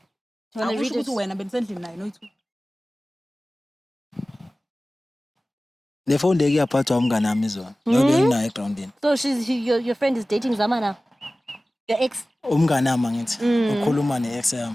Do you want to read Akusho ukuthi it? wena benisendlini naye noyithuka. Le phone leki yaphathwa umngane nami izona. Ngoba nginayo egroundini. So your friend is dating Zama now? Your ex? Umngane nami ngithi ukhuluma ne-ex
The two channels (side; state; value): both; normal; correlation 0.97